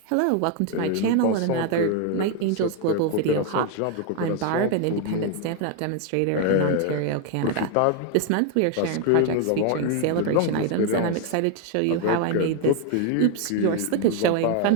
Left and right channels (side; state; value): both; different; correlation 0.01